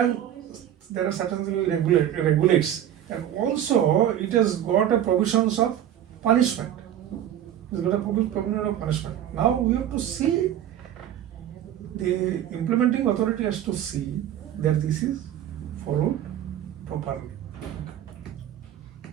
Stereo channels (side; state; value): left; quieter; 11.0 dB